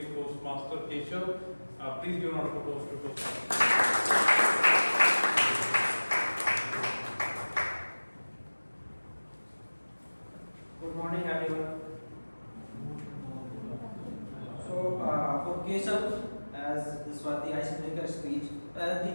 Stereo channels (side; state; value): both; inverted; correlation -1.00